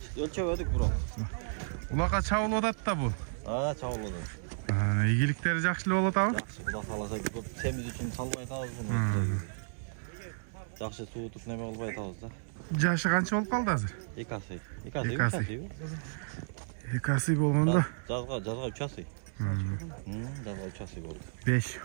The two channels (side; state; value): left; silent; digital silence